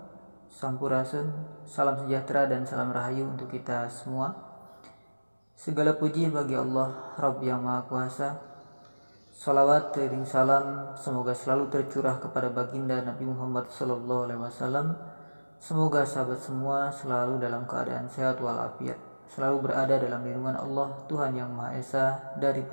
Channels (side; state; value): both; inverted; correlation -1.00